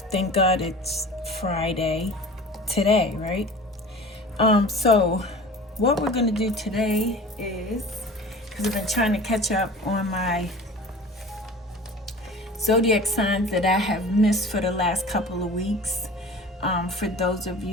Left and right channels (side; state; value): both; normal; correlation 0.39